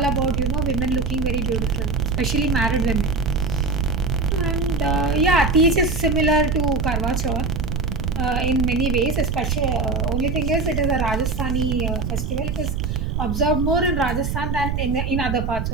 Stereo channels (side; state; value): right; noise; rumble, 2 dB below the sound